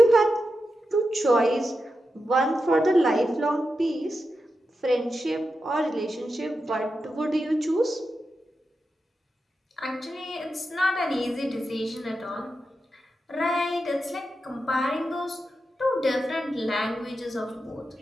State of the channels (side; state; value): both; normal; correlation 0.89